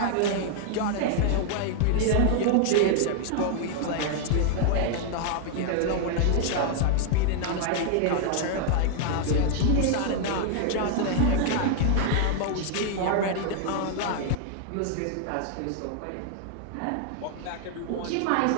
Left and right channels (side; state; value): both; different; correlation 0.00